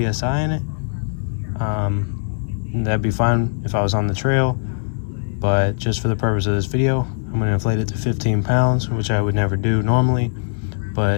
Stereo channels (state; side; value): silent; right; 65 dB below the other